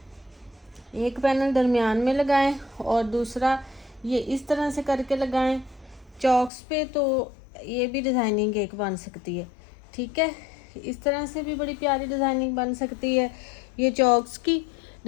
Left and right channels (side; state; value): right; drops out; at 6.5 s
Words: एक पैनल दरमियान में लगाएं और दूसरा ये इस तरह से करके लगाएं चॉक्स पे, तो ये भी डिज़ाइनिंग एक बन सकती है। ठीक है, इस तरह से भी बड़ी प्यारी डिज़ाइनिंग बन सकती है। ये चॉक्स की